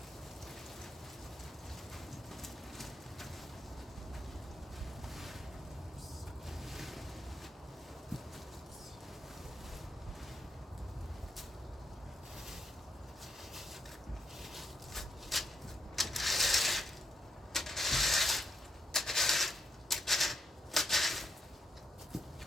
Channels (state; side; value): normal; both; correlation 0.82